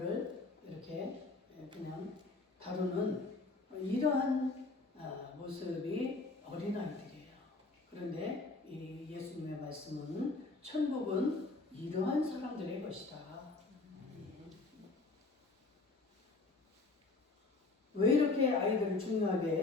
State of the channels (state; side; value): quieter; right; 3.4 dB